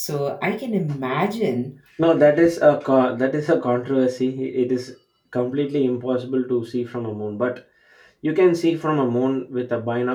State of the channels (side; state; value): both; identical; correlation 1.00